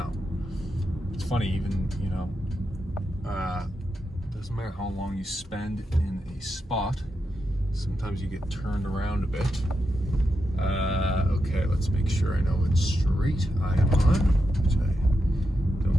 It's funny, even doesn't matter how long you spend in a spot, sometimes you get turned around a bit. Okay, let's make sure I know what street I am on, which I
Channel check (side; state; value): both; normal; correlation 0.87